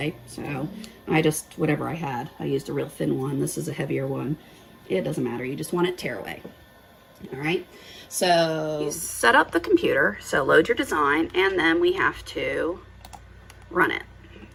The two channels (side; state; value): both; identical; correlation 1.00